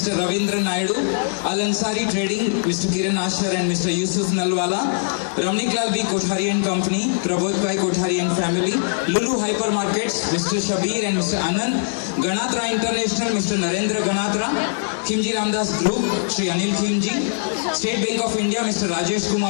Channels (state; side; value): silent; right; digital silence